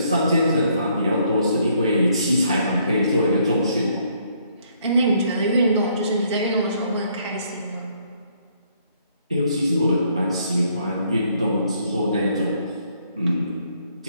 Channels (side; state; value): both; inverted; correlation -0.68